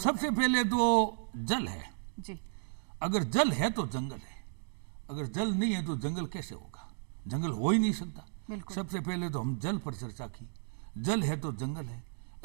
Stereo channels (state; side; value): silent; left; digital silence